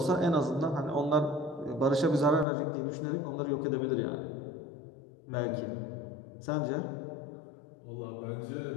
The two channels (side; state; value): right; drops out; at 2.5 s